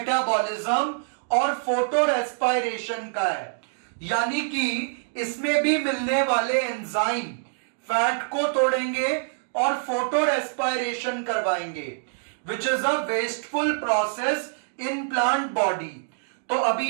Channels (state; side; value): silent; left; digital silence